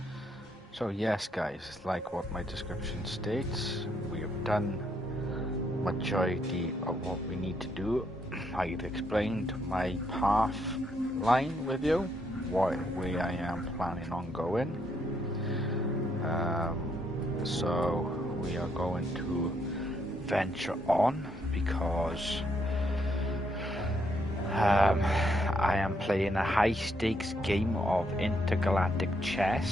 So yes guys, like what my description states, we have done majority of what we need to do. I've explained my path line with you, where I am planning on going. So we are going to venture on because I am playing a high-stakes game of intergalactic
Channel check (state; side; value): normal; both; correlation 0.75